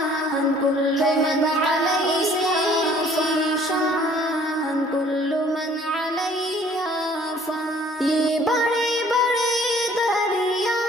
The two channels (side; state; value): both; normal; correlation 0.56